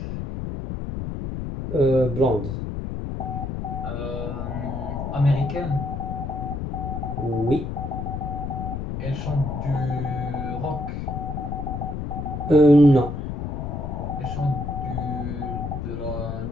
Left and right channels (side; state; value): left; noise; rumble, 4 dB below the sound